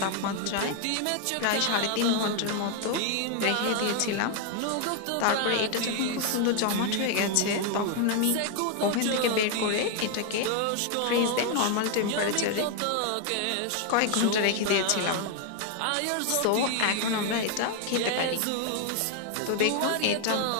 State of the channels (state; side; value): different; both; correlation 0.00